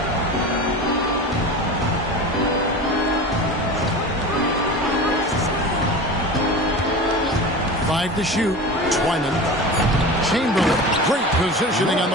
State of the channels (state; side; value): normal; both; correlation 0.32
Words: Five to shoot. Twyman. Chamberlain, great positioning on